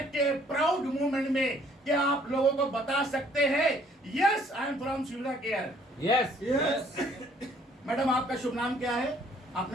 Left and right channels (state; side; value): normal; both; correlation 0.61